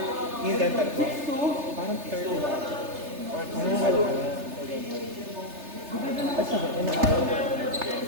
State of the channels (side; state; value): left; late; 3.3 ms